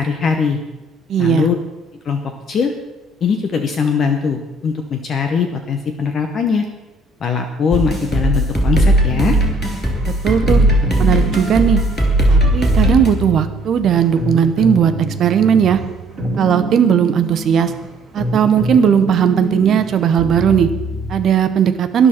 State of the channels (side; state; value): left; quieter; 3.0 dB